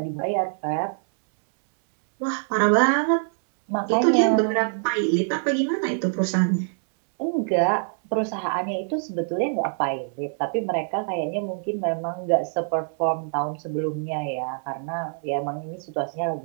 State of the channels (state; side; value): silent; left; 61 dB below the other